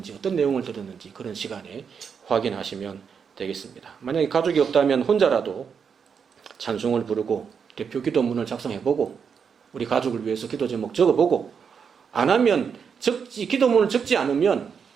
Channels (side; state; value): left; quieter; 6.6 dB